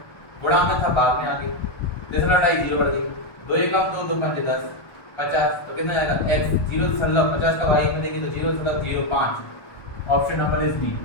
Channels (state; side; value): late; right; 1.2 ms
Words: गुणा में था बाद में आगे। जैसे लड़ाई 0 बढ़ गई, 2 1 2 2 5 10 50 तो कितना जाएगा? x 0.50 का y में देंगे तो 0.05। Option number is D.